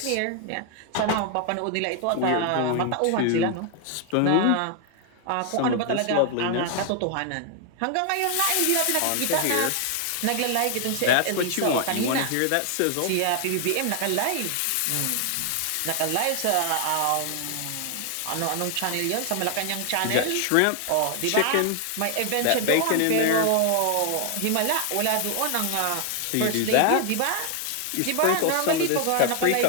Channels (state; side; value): different; both; correlation 0.00